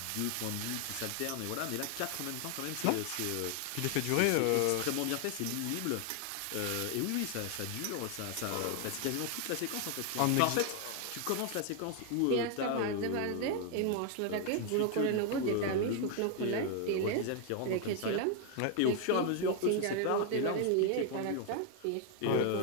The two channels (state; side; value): different; both; correlation 0.00